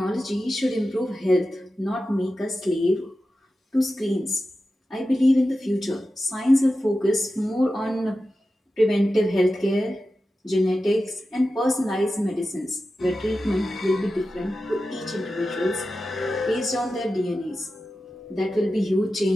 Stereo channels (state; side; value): normal; both; correlation 0.93